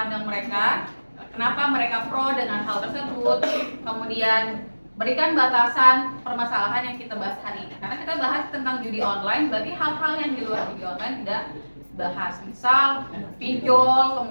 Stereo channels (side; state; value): both; inverted; correlation -1.00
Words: mereka, kenapa mereka pro dengan hal tersebut, kemudian berikan batasan permasalahan yang kita bahas hari ini. Karena kita bahas tentang judi online, berarti hal-hal yang di luar judi online tidak bahas. Misal pinjol,